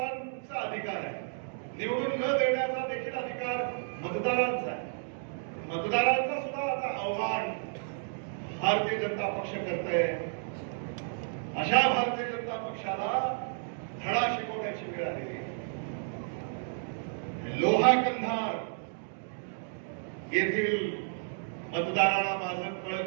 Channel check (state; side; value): silent; left; digital silence